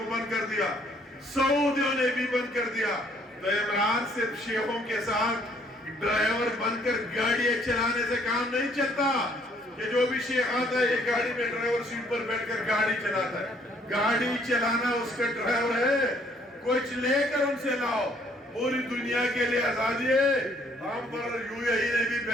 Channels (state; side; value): normal; both; correlation 0.64